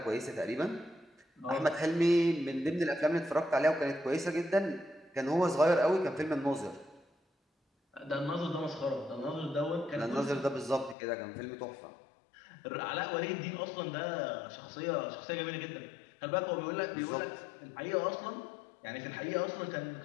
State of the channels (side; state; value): right; drops out; at 11.0 s